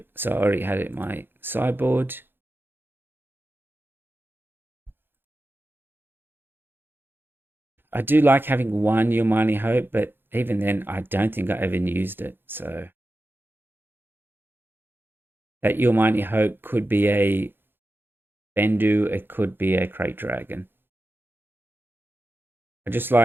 so I already had it in my sideboard. I do like having one Your Mighty Hope, but even then, I don't think I ever used it. So that Your Mighty Hope could be a Bendu, it could be a Crate Dragon. I just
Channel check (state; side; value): late; left; 0.10 ms